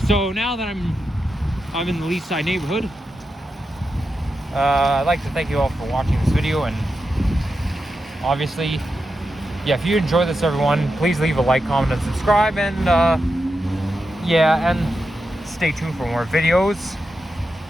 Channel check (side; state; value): both; normal; correlation 0.88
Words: now that I'm in the Leaside neighborhood, I'd like to thank you all for watching this video, and obviously, yeah, if you enjoy this, everyone, please leave a like, comment, and subscribe, and yeah, and stay tuned for more videos.